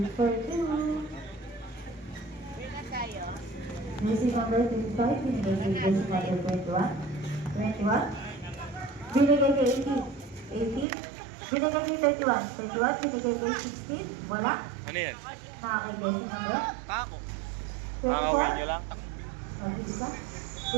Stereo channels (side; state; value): left; drops out; at 10.9 s